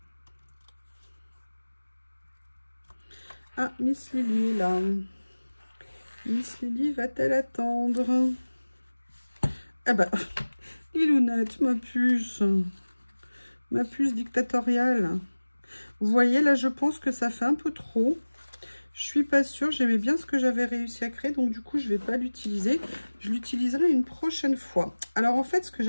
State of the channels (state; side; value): inverted; both; correlation -1.00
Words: Ah, Miss Lily là. Miss Lily va-t-elle attendre? Ah bah, Lilounette, ma puce dictatoriale. Vous voyez, là, je pense que ça fait un peu trop. Je suis pas sûre, j'aimais bien ce que j'avais réussi à créer, donc du coup, je vais pas l'utiliser. Je l'utiliserai une prochaine fois. Alors, en fait, ce que